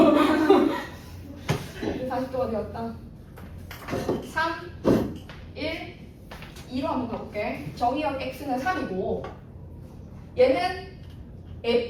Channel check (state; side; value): identical; both; correlation 1.00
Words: 40도가 되었다. 3, 1, 2로 한번 가볼게. 정의역 x는 3이고 얘는